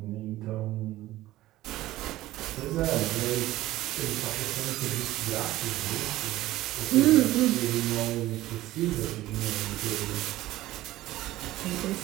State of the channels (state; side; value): quieter; left; 16.1 dB